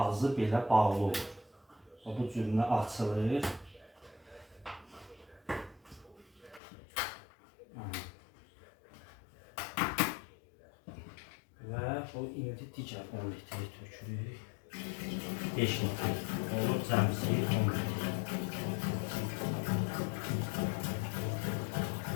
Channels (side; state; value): right; drops out; at 6.6 s